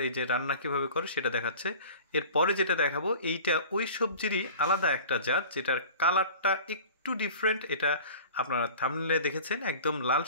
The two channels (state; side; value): inverted; both; correlation -0.42